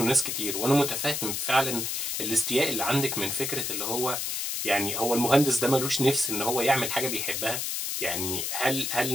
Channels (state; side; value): noise; left; hiss, 2 dB below the sound